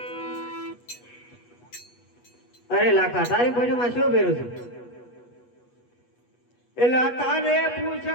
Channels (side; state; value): right; late; 8.3 ms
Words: અરે લાખા તારી પોજમાં શું ભેરું છે એટલે તારે